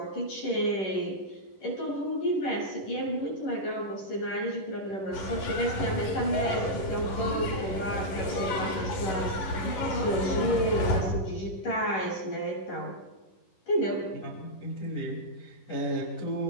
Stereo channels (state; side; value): late; right; 10 ms